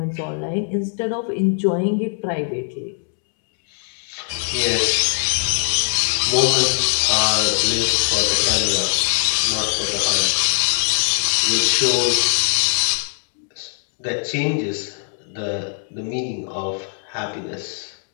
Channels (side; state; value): right; silent; 65 dB below the other